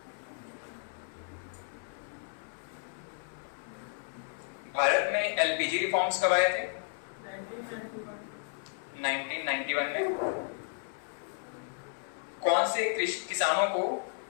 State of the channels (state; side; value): silent; right; 56 dB below the other